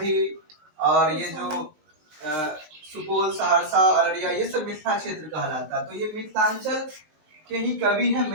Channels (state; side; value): late; left; 20 ms